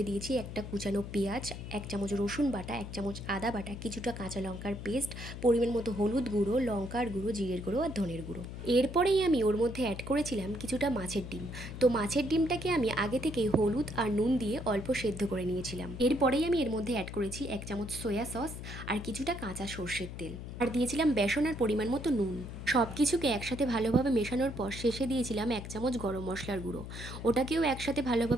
দিয়েছি একটা কুচানো পেঁয়াজ, 1 চামচ রসুন বাটা, 1 চামচ আদা বাটা, কিছুটা কাঁচা লঙ্কার পেস্ট, পরিমাণ মতো হলুদ গুঁড়ো, লঙ্কার গুঁড়ো, জিরের গুঁড়ো আর ধনের গুঁড়ো। এরপরেই আমি ওর মধ্যে অ্যাড করেছিলাম কিছুটা মাছের ডিম। তো মাছের ডিমটাকে আমি আগে থেকেই হলুদ আর নুন দিয়ে অল্প সেদ্ধ করে নিয়েছিলাম। এরপরেই আমি এর মধ্যে অ্যাড করেছি 1 চামচ সয়া সস আর কিছুটা কাঁচা সর্ষের তেল, আর দিয়েছিলাম বেসন আর পরিমাণ মতো নুন। সব কিছুকে একসাথে ভালোভাবে মেশানোর পর শেষে দিয়েছিলাম 1 চামচ গরম মশলার গুঁড়ো। ওটাকেও একসাথে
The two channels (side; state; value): left; noise; hum, 9 dB below the sound